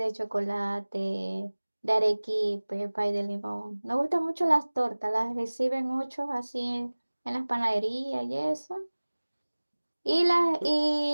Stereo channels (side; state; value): both; inverted; correlation -1.00